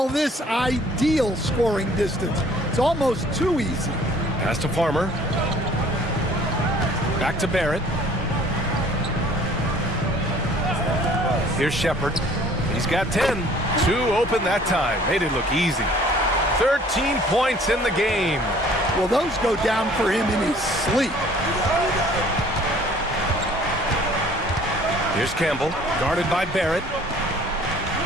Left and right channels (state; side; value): normal; both; correlation 0.54